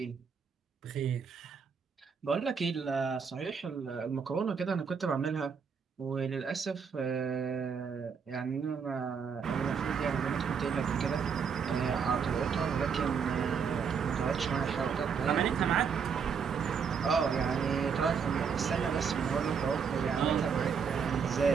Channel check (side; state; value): left; quieter; 6.3 dB